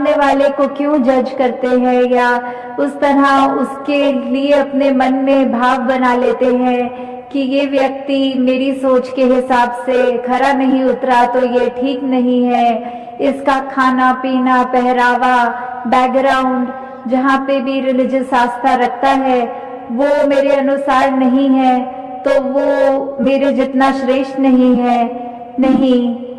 वाले को क्यों जज करते हैं या उस तरह उसके लिए अपने मन में भाव बना लेते हैं कि ये व्यक्ति मेरी सोच के हिसाब से खरा नहीं उतरा तो ये ठीक नहीं है, इसका खाना पीना पहरावा बैकग्राउंड जहाँ पे भी रिलीजियस आस्था रखता है वो मेरे अनुसार नहीं है, तो वो मेरे जितना श्रेष्ठ नहीं है। नहीं,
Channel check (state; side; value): identical; both; correlation 1.00